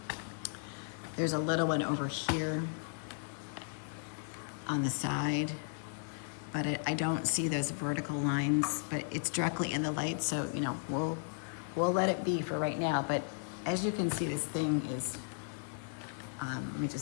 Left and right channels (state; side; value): silent; right; digital silence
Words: There's a little one over here on the side, but I don't see those vertical lines, but it's directly in the light. So, you know, we'll let it be for right now. But as you can see, this thing is, let me